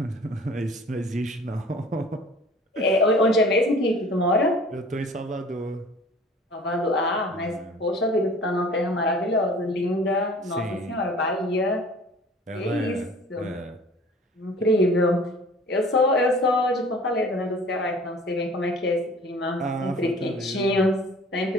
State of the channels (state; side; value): normal; both; correlation 0.47